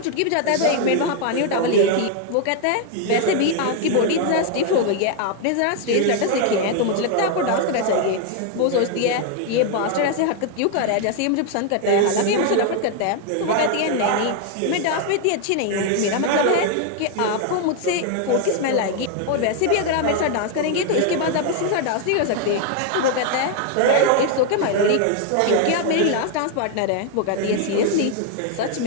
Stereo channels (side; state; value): both; different; correlation 0.00